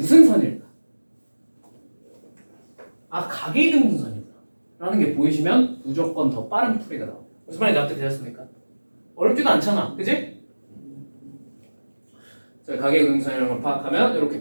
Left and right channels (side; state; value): both; inverted; correlation -1.00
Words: 선일까? 아, 각의 이등분선이구나 라는 게 보이시면 무조건 더 빠른 풀이가 나와요. 무슨 말인지 납득되셨습니까? 어렵지도 않잖아. 그지? 자, 가계이동선이라는 걸 파악하면 이렇게